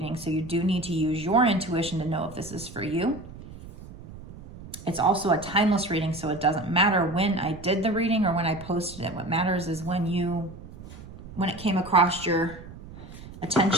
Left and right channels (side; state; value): right; noise; rumble, 15 dB below the sound